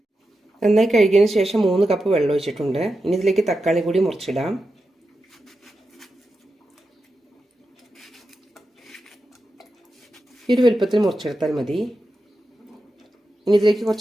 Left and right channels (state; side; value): normal; both; correlation 0.90